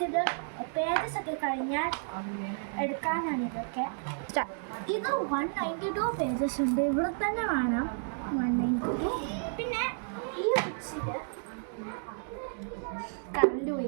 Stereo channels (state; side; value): silent; left; digital silence